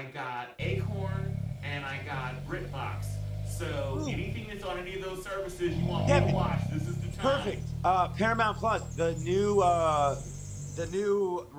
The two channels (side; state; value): both; identical; correlation 1.00